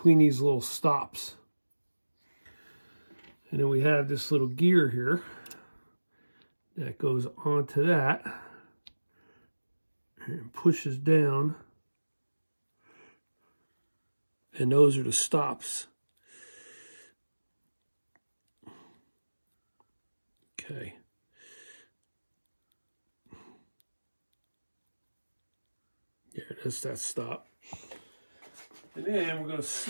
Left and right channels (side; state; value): both; inverted; correlation -1.00